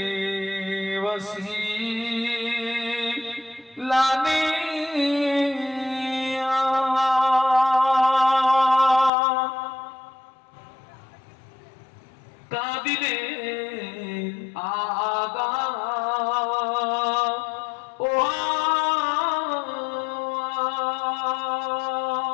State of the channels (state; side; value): drops out; right; at 9.1 s